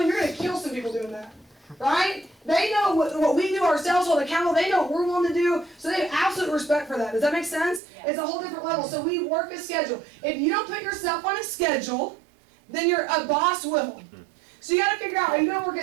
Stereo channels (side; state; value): left; drops out; at 7.8 s